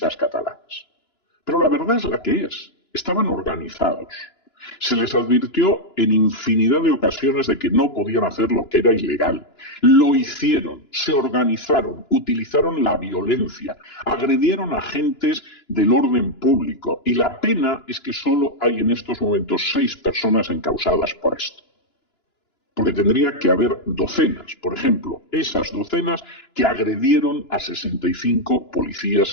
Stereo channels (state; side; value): late; right; 2.9 ms